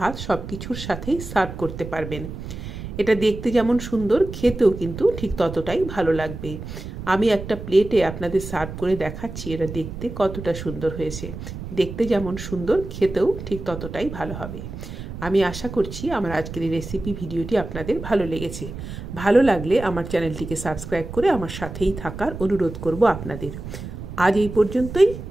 সব কিছুর সাথেই সার্ভ করতে পারবেন। এটা দেখতে যেমন সুন্দর, খেতেও কিন্তু ঠিক ততটাই ভালো লাগবে। আমি একটা প্লেটে আপনাদের সার্ভ করে দেখাচ্ছি এটা দেখতে কতটা সুন্দর হয়েছে। দেখতে যেমন সুন্দর, খেতেও ঠিক ততটাই ভালো হবে। আমি আশা করছি আমার আজকের এই রেসিপি ভিডিওটি আপনাদের ভালো লেগেছে। ভালো লাগলে আমার চ্যানেলটিকে সাবস্ক্রাইব করে আমার সাথেই থাকার অনুরোধ করব আপনাদের। আজ এই পর্যন্তই।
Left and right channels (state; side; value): noise; right; rumble, 9 dB below the sound